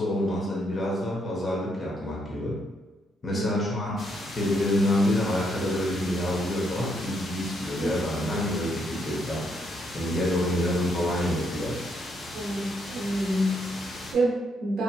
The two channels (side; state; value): both; normal; correlation 0.75